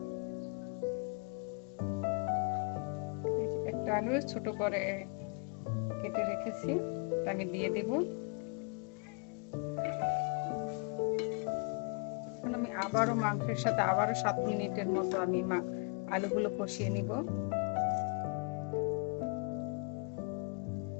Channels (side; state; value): right; quieter; 36.1 dB